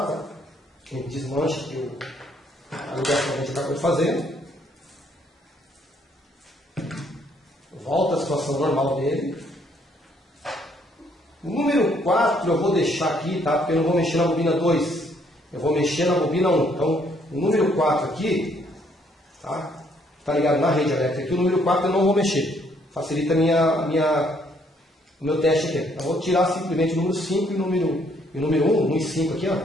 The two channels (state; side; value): normal; both; correlation 0.67